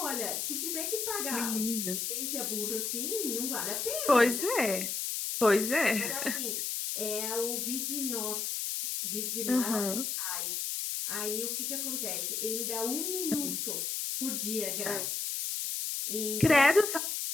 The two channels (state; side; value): noise; left; hiss, 1 dB below the sound